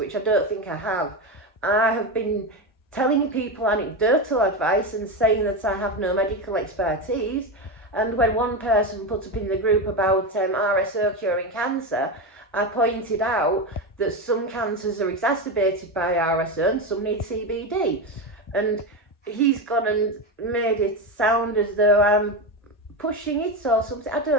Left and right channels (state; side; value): normal; both; correlation 0.16